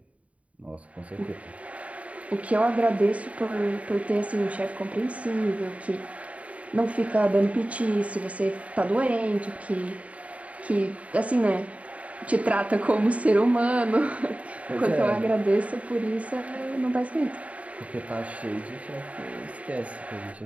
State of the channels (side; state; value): left; late; 0.066 ms